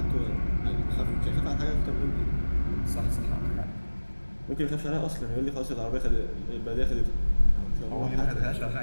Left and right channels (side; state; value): both; inverted; correlation -1.00